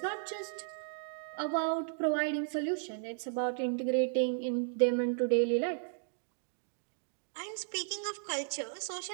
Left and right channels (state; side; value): silent; left; digital silence